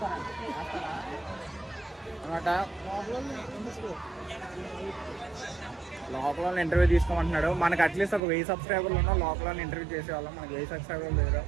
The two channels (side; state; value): left; drops out; at 8.2 s